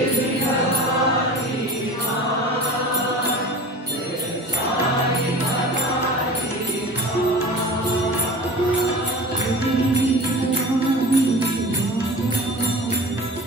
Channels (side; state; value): both; normal; correlation 0.36